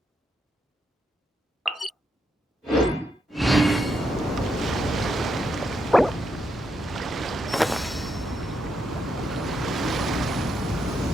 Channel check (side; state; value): both; normal; correlation 0.81